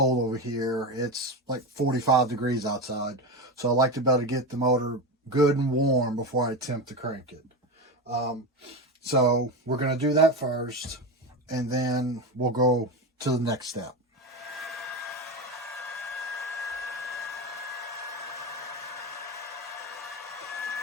over here. It's like 45 degrees outside. So I like to be able to get the motor good and warm before I attempt to crank it. So we're going to do that first, and then we'll go to the next step.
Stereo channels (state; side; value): normal; both; correlation 0.20